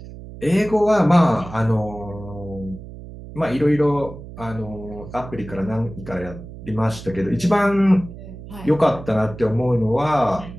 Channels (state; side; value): noise; right; hum, 14 dB below the sound